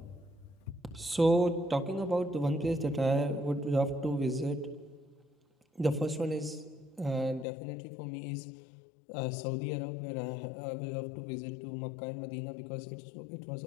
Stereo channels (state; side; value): drops out; right; at 7.5 s